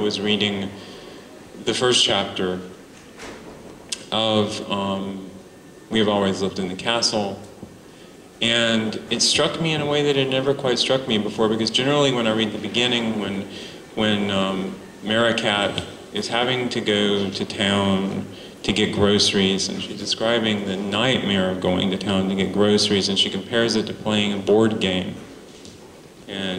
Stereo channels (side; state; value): both; identical; correlation 1.00